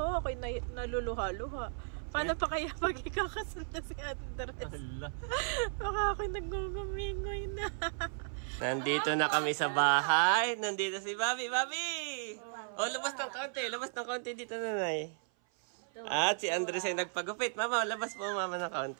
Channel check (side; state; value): left; silent; 54 dB below the other